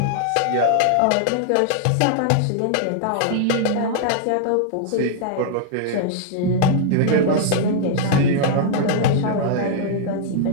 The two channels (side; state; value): both; different; correlation -0.01